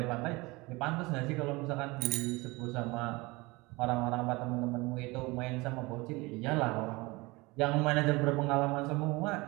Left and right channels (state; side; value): quieter; left; 23.6 dB